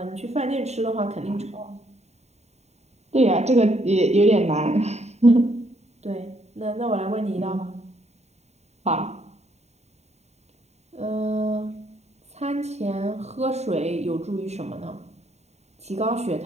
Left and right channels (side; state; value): left; late; 0.32 ms